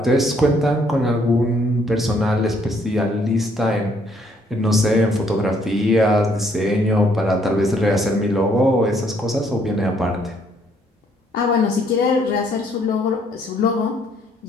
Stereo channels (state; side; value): normal; both; correlation 0.67